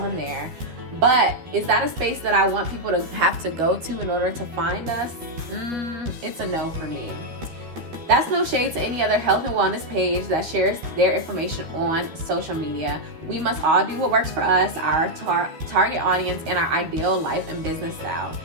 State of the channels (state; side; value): late; left; 13 ms